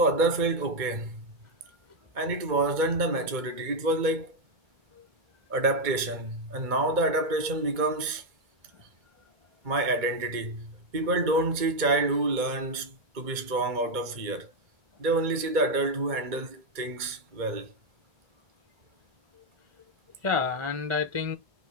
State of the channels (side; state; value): left; late; 2.2 ms